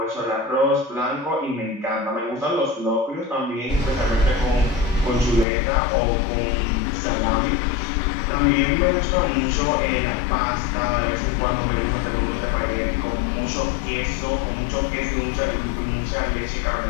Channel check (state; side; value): drops out; right; at 5.5 s